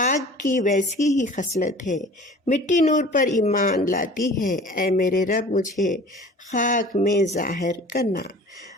کی ویسی ہی خصلت ہے، مٹی نور پر ایمان لاتی ہے، اے میرے رب مجھے خاک میں ظاہر کرنا۔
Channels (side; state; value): both; normal; correlation 0.44